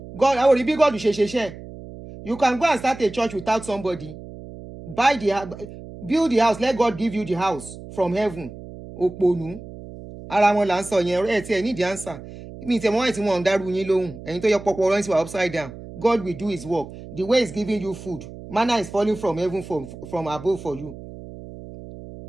God, I will be God. You can go and start a church without somebody. Build the house. Let God give you the house from heaven. Oponu. Ara wọn là ń sọ yẹn ẹ tí ẹ need the answer. Mi tẹ mọ́ ẹ̀ tí wọ́n ń dárú yín lóhùn. Ẹ̀yin tó yẹ pọpọ ọ̀rọ̀ yín upside down. God will do his work. The way he's giving you food. Manna is falling from heaven from above for you.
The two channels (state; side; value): noise; right; hum, 14 dB below the sound